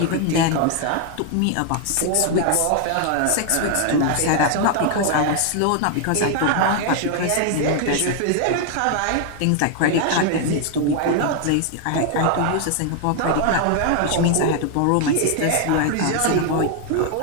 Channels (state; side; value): different; both; correlation 0.00